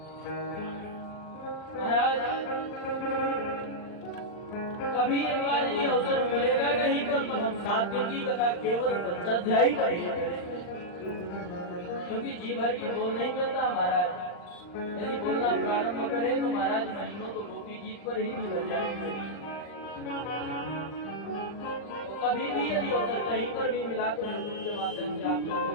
महाराज, कभी एक बार यदि अवसर मिलेगा कहीं पर तो हम 7 दिन की कथा केवल पंचाध्यायी का ही करेंगे, क्योंकि जी भर की बोल नहीं मिलता महाराज। यदि बोलना प्रारंभ करें तो महाराज महीनों तो गोपी गीत पर ही निकल जाएंगे। तो कभी भी यदि अवसर कहीं पर भी मिला तो यूट्यूब के माध्यम से आप लोग को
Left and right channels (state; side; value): late; right; 39 ms